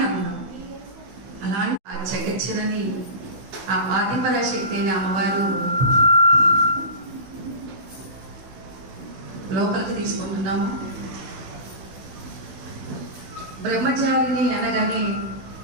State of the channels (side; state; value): left; late; 16 ms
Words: అందం. అలాంటి ఆ జగచ్చినని ఆ ఆదిపరాశక్తి అయిన అమ్మవారు లోపలికి తీసుకుంటున్నాము. బ్రహ్మచారిని అనగానే